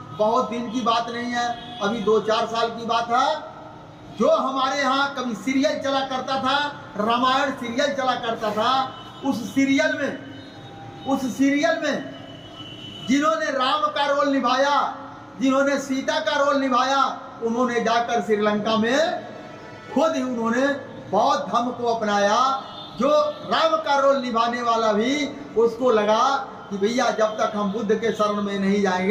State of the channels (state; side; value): identical; both; correlation 1.00